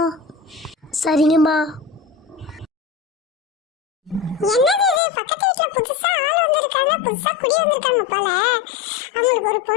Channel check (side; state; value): right; drops out; at 5.0 s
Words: சரிங்கம்மா. என்னது இது? பக்கத்து வீட்டுல புதுசா ஆள் வந்திருக்காங்க, புதுசா குடி வந்திருக்காங்க போல. அவங்களுக்கு ஒரு